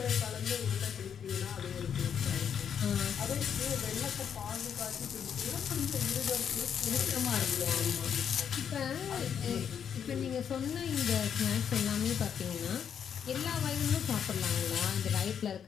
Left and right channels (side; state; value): right; quieter; 8.0 dB